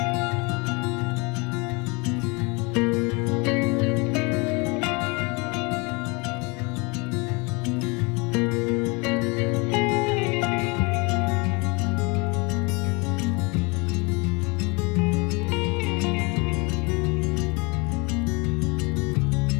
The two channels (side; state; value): right; quieter; 28.7 dB